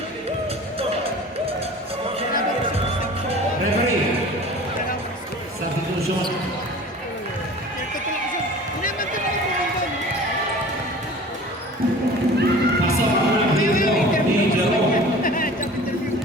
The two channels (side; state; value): both; normal; correlation 0.42